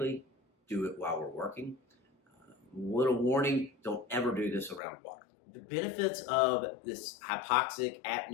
do it while we're working. Little warning, don't ever do this around water. The benefits of this hypoxic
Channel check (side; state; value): right; drops out; at 4.8 s